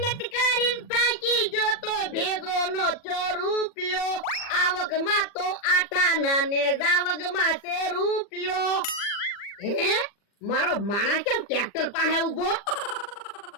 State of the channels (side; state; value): right; late; 40 ms